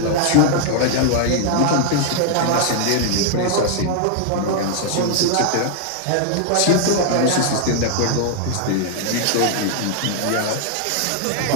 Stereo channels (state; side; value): different; both; correlation 0.00